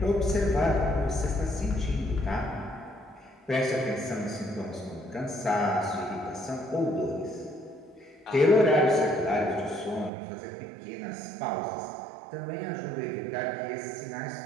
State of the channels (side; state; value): left; drops out; at 10.1 s